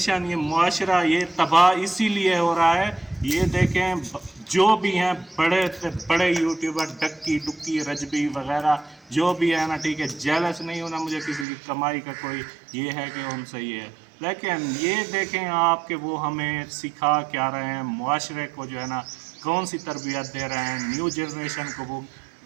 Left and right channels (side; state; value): left; drops out; at 11.5 s